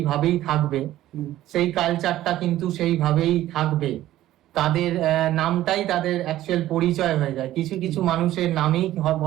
থাকবে, সেই কালচারটা কিন্তু সেইভাবেই থাকবে। তাদের নামটাই তাদের অ্যাকচুয়াল পরিচয় হয়ে যায়। কিছু কিছু মানুষের নামেই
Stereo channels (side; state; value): left; quieter; 14.2 dB